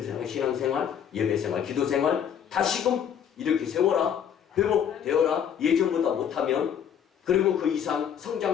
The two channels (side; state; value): right; quieter; 8.5 dB